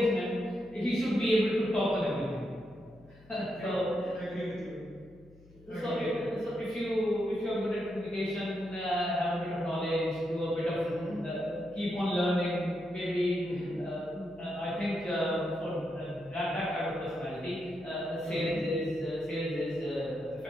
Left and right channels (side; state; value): left; noise; hum, 24 dB below the sound